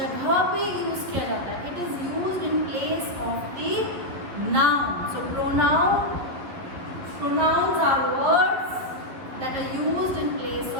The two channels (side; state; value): left; late; 11 ms